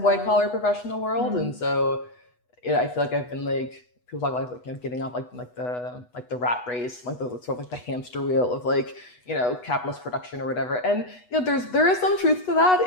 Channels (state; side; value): late; right; 8.1 ms